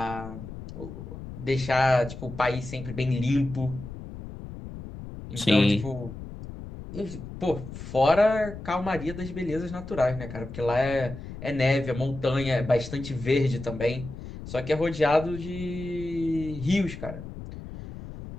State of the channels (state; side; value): noise; left; rumble, 11 dB below the sound